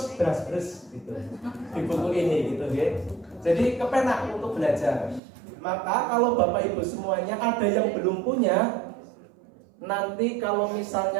beras-beras gitu di buku ini gitu ya. Jadi kepenak untuk belajar. Maka kalau Bapak Ibu semuanya ada yang belum punya, nanti kalau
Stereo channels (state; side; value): drops out; left; at 5.2 s